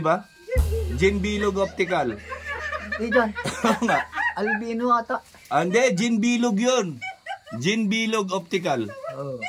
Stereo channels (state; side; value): identical; both; correlation 1.00